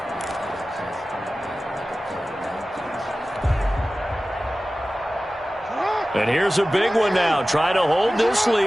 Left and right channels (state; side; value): normal; both; correlation 0.96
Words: And here's a big one now. Trying to hold this